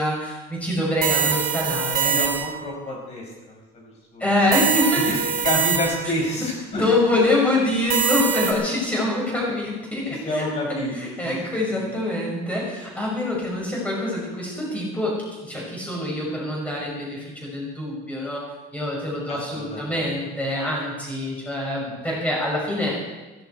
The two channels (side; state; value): both; normal; correlation 0.34